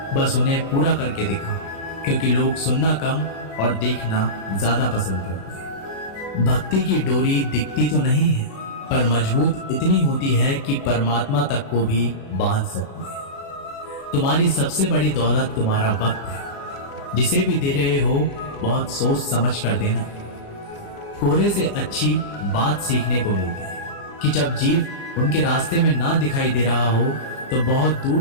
बस उन्हें पूरा करके दिखाओ, क्योंकि लोग सुनना कम और देखना ज़्यादा पसंद करते हैं। भक्ति की डोरी दिखती तो नहीं है, पर मजबूत इतनी होती है कि परमात्मा तक को भी बांध सकती है। तुम्हारी सबसे बड़ी दौलत तुम्हारा वक्त है। जिसे भी दे रहे हो बहुत सोच समझ कर देना। कोहरे से अच्छी बात सीखने को मिलती है कि जब जीव उनके रास्ते में ना दिखाई दे रहा हो तो बहुत दूर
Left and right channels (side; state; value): right; late; 36 ms